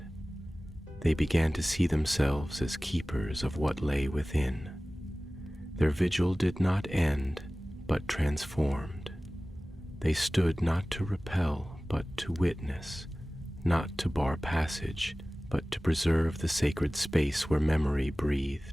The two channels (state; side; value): normal; both; correlation 0.98